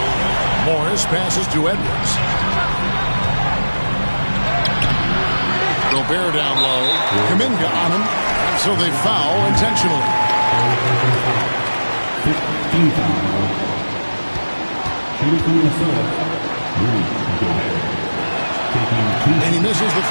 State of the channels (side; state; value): both; inverted; correlation -1.00